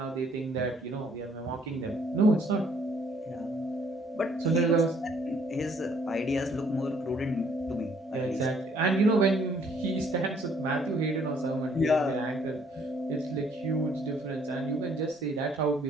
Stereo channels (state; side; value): normal; both; correlation 0.63